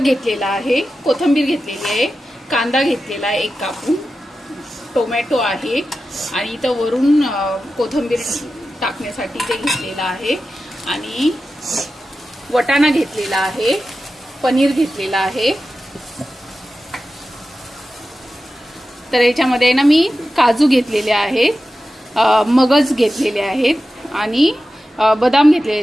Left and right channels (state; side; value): normal; both; correlation 0.93